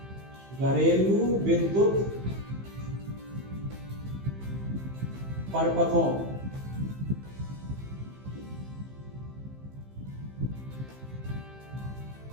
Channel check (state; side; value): late; left; 15 ms